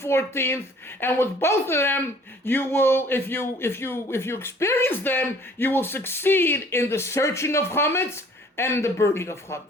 14th. And with both of them, you will, if you experience them, you will succeed in the searching of chametz and the burning of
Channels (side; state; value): both; normal; correlation 0.54